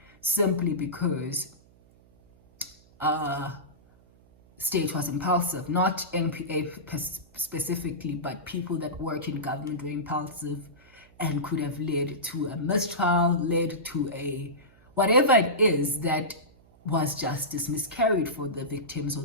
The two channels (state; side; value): noise; right; hum, 28 dB below the sound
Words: simply because state was impulsive. Not NPA specifically, but people that work in government were impulsive and could have led to a mistrial, led to a whatever it is that was justice miscarried for the victims or